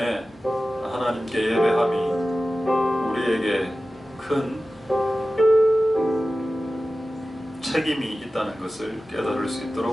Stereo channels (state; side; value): normal; both; correlation 0.95